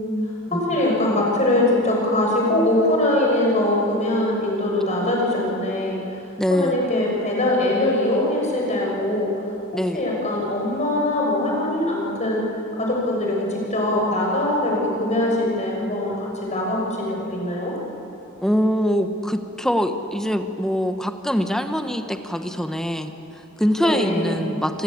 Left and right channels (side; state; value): both; normal; correlation 0.39